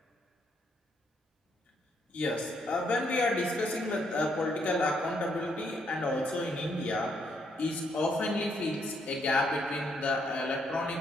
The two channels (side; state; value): both; normal; correlation 0.73